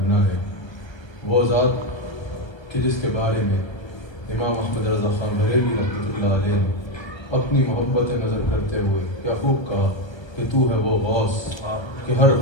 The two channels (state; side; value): late; right; 1.3 ms